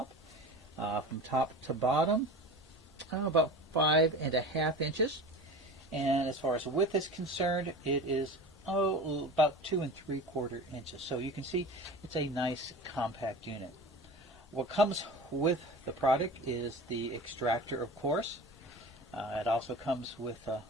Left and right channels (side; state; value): both; normal; correlation 0.34